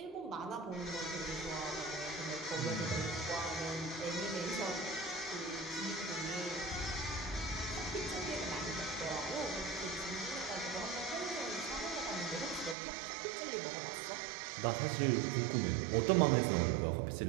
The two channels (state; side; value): drops out; left; at 12.8 s